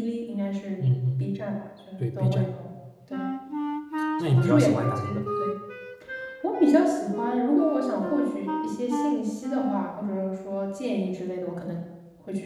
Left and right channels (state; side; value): identical; both; correlation 1.00